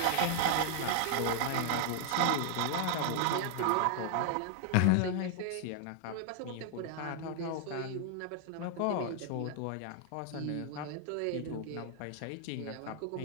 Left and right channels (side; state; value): both; different; correlation 0.00